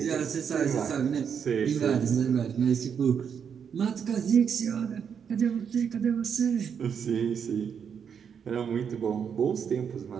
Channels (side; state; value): left; quieter; 7.3 dB